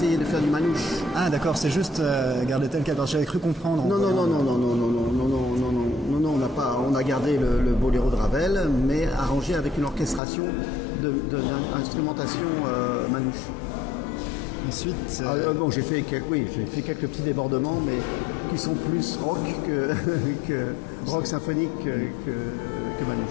de faire du manouche. Ah d'accord, c'est juste garder tel quel. J'avais cru comprendre. Non, on n'a pas. On a gardé le boléro de Ravel, mais arrangé avec une orchestration d'instrumentation manouche. Ensuite, bon, j'ai fait quelques petits débordements, mais qui sont plus rock que rock symphonique que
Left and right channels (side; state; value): right; drops out; at 10.2 s